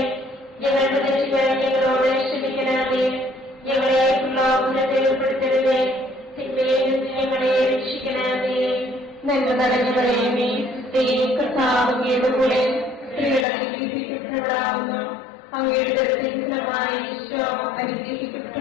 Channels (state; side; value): drops out; right; at 13.5 s